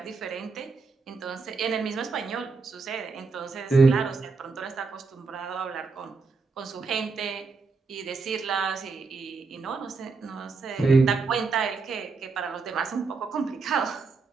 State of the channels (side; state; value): left; quieter; 4.4 dB